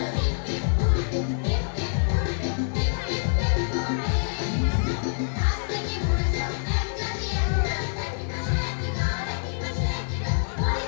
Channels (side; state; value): right; silent; digital silence